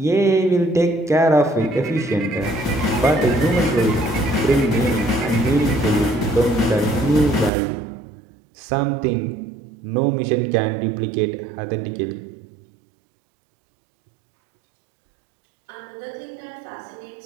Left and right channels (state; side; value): drops out; left; at 7.5 s